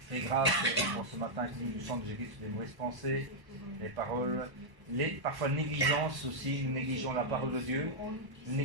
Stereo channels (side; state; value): left; late; 1.0 ms